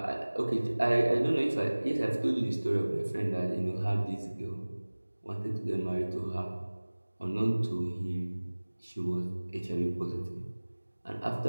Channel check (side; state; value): both; inverted; correlation -1.00